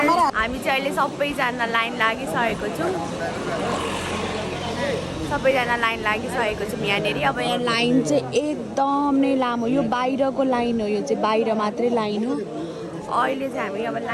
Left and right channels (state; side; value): identical; both; correlation 1.00